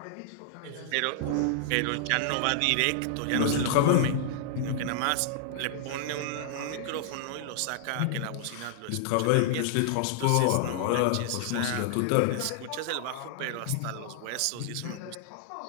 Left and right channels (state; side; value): different; both; correlation -0.01